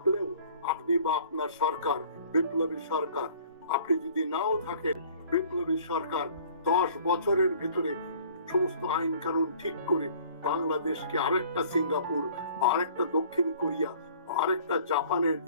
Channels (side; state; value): both; inverted; correlation -0.52